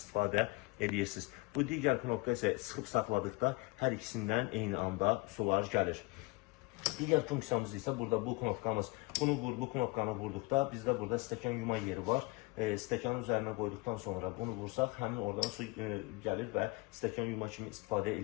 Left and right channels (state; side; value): quieter; right; 25.0 dB